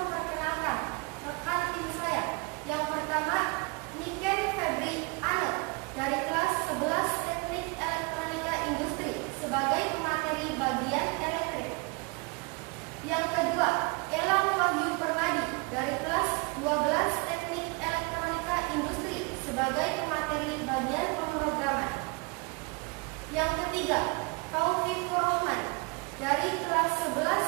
rekan tim saya. Yang pertama, Niken Febri Anel dari kelas 11 Teknik Elektronika Industri sebagai pemateri bagian elektrik. Yang kedua, Elang Wahyu Permadi dari kelas 12 Teknik Elektronika Industri sebagai pemateri bagian pemrograman. Yang ketiga, Taufik Rohman dari kelas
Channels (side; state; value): left; quieter; 29.9 dB